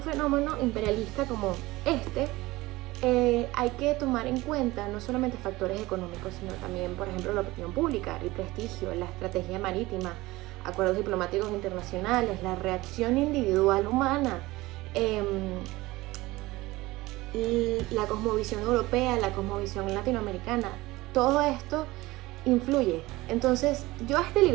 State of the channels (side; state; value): left; quieter; 19.7 dB